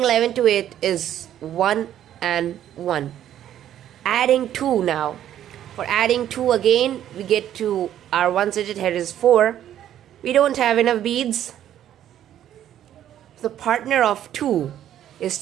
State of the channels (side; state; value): left; quieter; 11.2 dB